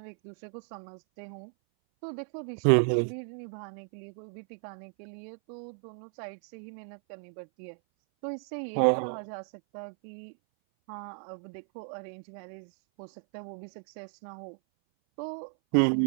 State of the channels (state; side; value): silent; left; 55 dB below the other